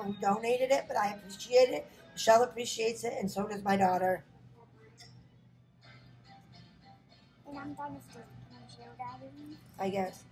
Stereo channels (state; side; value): identical; both; correlation 1.00